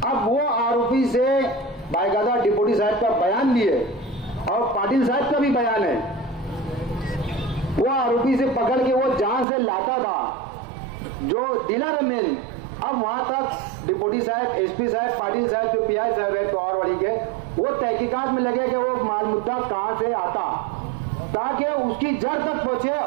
अब वो आरोपी से बाकायदा डिप्टी साहब का बयान भी है और पाटिल साहब का भी बयान है। वो आरोपी से पकड़ के वो जहां से लाता था जो डीलर मेन, अब वहां तक डिप्टी साहब, एसपी साहब, पाटिल साहब जो पीआई साहब है पवारवाड़ी के, वो तहकीकात में लगे कि वो माल मुद्दा कहां से आता, ताकि उसकी जड़ तक पहुंचे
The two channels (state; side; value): drops out; left; at 9.5 s